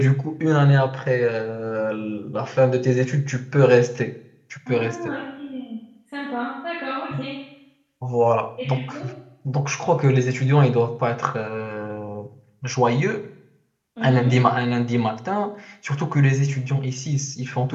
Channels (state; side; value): identical; both; correlation 1.00